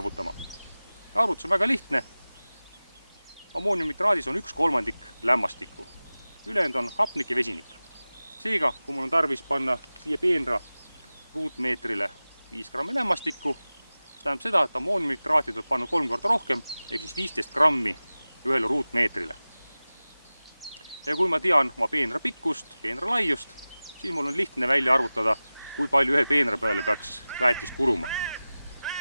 Arvutus on väga lihtne. Ammooniumnitraadis on 1/3 lämmastikku. Ülejäänud on hapnik ja vesinik. Seega, kui mul on tarvis panna siia peenra ruutmeetrile 5 grammi lämmastikku, tähendab seda, et ammooniumnitraati tuleb panna 3 korda rohkem, ehk siis 15 grammi ühele ruutmeetrile. Ja kui ma tean oma peenra pikkust, peenra laiust, siis mul on lihtne välja arvutada, kui palju ühe peenra peale peaks väetist kuluma.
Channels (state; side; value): inverted; both; correlation -0.97